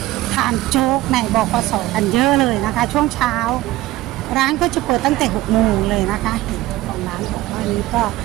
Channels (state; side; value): quieter; left; 16.8 dB